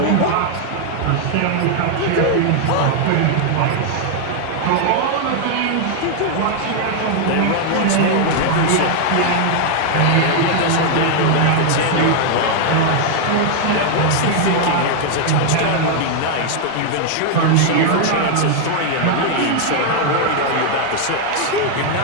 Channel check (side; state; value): both; different; correlation 0.00